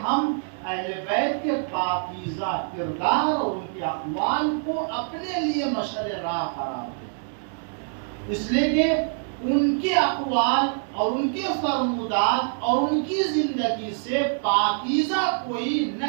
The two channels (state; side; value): silent; left; digital silence